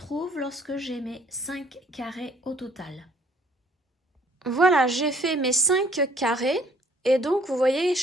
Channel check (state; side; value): normal; both; correlation 0.60